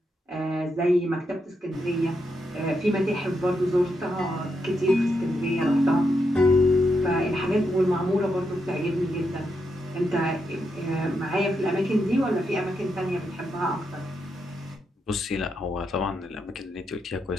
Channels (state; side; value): normal; both; correlation 0.83